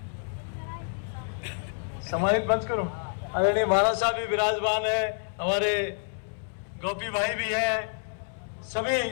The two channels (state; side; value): silent; right; 59 dB below the other